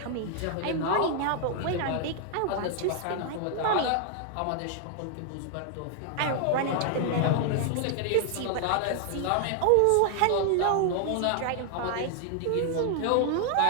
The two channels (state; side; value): different; both; correlation 0.00